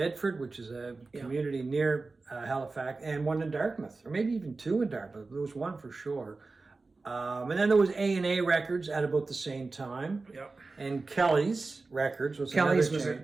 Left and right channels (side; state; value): left; quieter; 3.7 dB